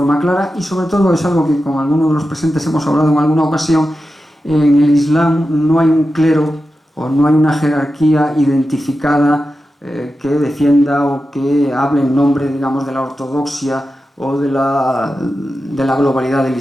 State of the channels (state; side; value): normal; both; correlation 0.91